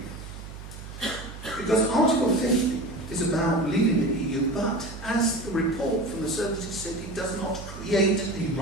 Because Article 50 is about leaving the EU, but as the report from the services said, it does not create a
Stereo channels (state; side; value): noise; right; hum, 13 dB below the sound